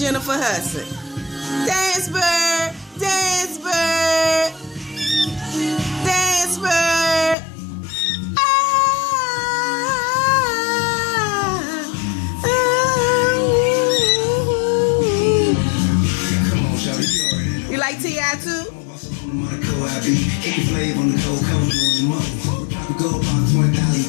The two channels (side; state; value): right; drops out; at 7.4 s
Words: Hudson. Dance bird, dance bird, dance bird. You like T.I. too? Go about 20,000